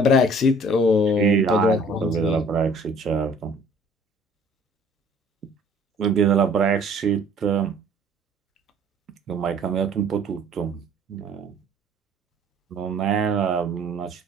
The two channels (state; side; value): normal; both; correlation 0.54